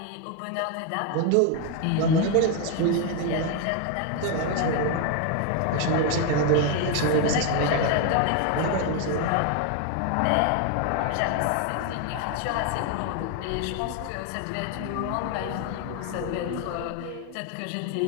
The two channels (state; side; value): different; both; correlation 0.01